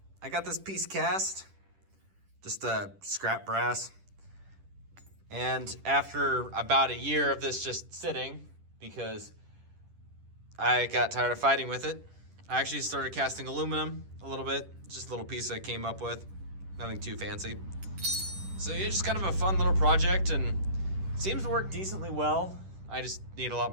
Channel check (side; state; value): left; late; 10 ms